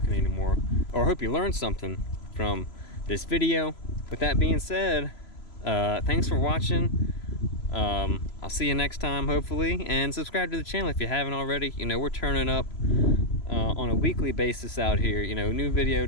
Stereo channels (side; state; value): right; late; 3.0 ms